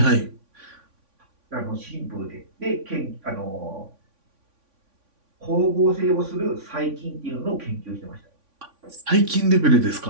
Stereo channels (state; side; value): late; left; 3.5 ms